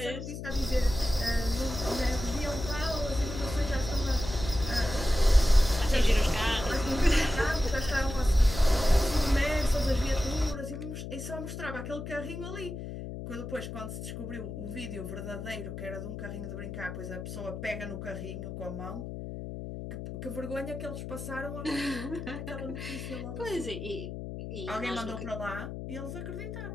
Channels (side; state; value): left; noise; hum, 7 dB below the sound